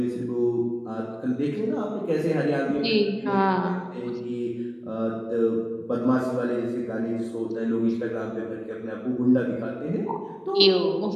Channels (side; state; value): both; identical; correlation 1.00